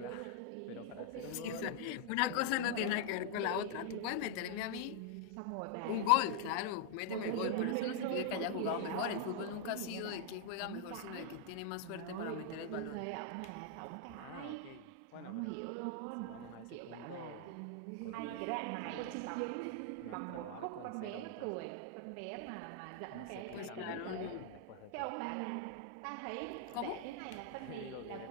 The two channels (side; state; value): both; different; correlation 0.00